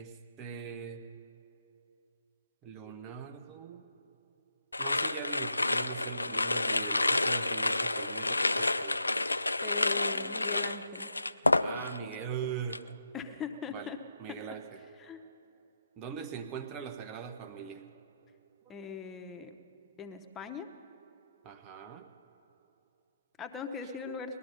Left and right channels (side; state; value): both; inverted; correlation -0.83